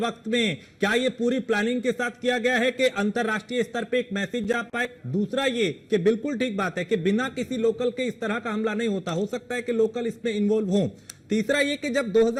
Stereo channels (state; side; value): identical; both; correlation 1.00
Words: में क्या ये पूरी प्लानिंग के साथ किया गया है कि अंतरराष्ट्रीय स्तर पे एक मैसेज जा पाए? दूसरा ये कि बिल्कुल ठीक बात है कि बिना किसी लोकल के इस तरह का हमला नहीं होता, हो सकता है कि लोकल इसमें इन्वॉल्व हो। तीसरा ये कि जब